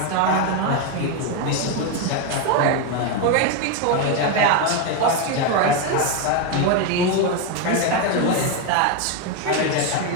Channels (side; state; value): both; different; correlation 0.02